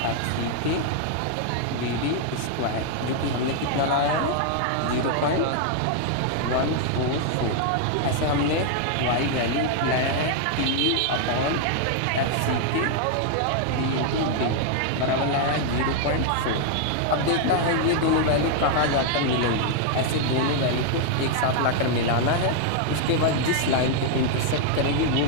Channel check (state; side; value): different; both; correlation 0.00